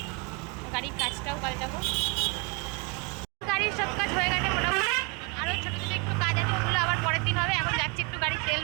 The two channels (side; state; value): left; quieter; 30.2 dB